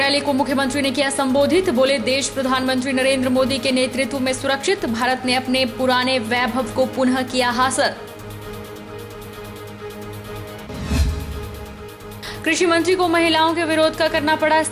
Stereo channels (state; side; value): identical; both; correlation 1.00